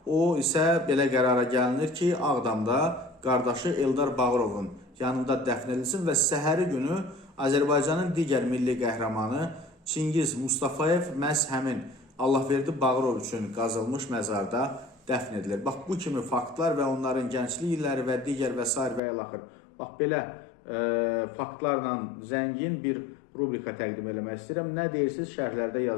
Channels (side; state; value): right; drops out; at 19.0 s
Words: o isə belə qərara gəlinir ki, Ağdamda qardaşı Eldar Bağırovun yanında dəfn edilsin və səhəri günü Azərbaycanın digər milli qəhrəmanı Çingiz Mustafayev məhz həmin Allahverdi Bağırov üçün qazılmış məzarda dəfn edilir. Bax, bu kimi faktlar və onların gənclik illəri və digər və s. və ilaxır. Bax, belə faktlarla zəngin bir rubrika təqdim eləmək istəyirəm. Nə deyirsiniz, şərhlərdə